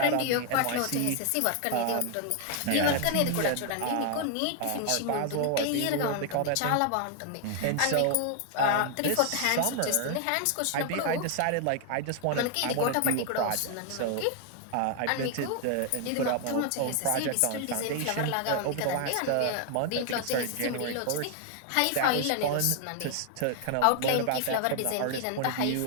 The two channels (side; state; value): both; different; correlation 0.00